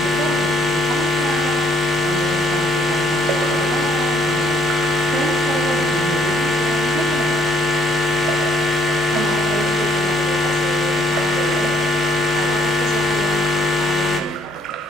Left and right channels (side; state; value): both; normal; correlation 0.67